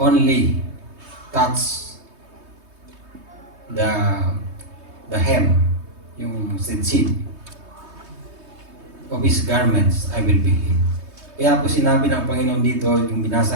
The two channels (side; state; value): left; late; 3.2 ms